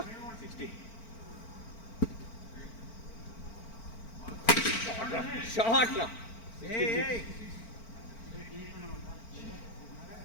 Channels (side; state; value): right; late; 4.4 ms